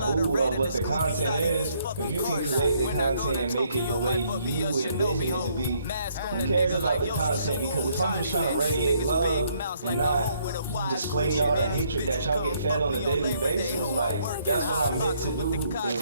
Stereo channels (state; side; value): inverted; both; correlation -0.68